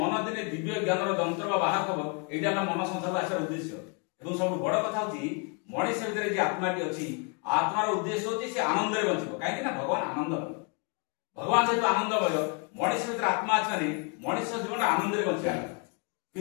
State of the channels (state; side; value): quieter; right; 35.5 dB